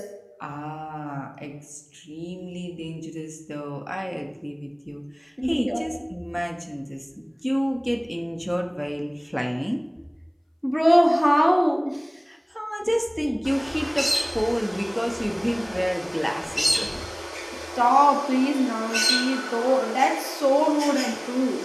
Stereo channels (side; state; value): both; identical; correlation 1.00